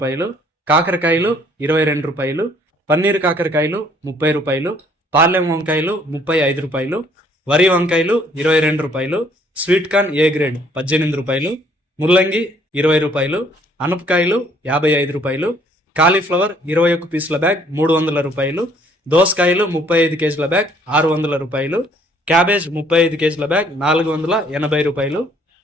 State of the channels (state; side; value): normal; both; correlation 0.62